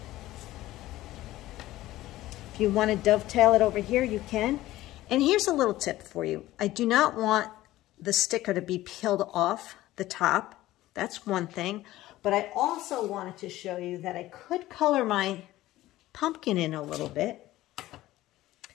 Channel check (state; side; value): quieter; right; 16.1 dB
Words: If you want to dovetail it over here, you can. And here's a little tip for you. I do not want the sticker to be peeled off the top. That's one thing. But I also wanted to show you that I could color my pumpkin in a little bit